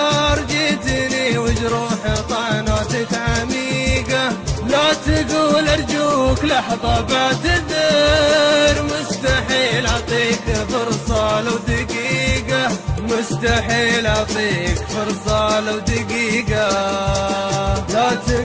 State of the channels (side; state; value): both; identical; correlation 1.00